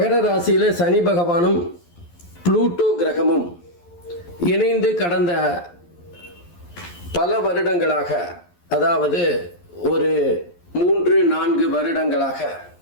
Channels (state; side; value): late; right; 11 ms